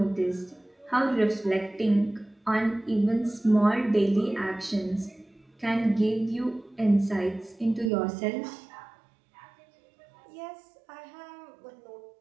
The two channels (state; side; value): drops out; left; at 7.9 s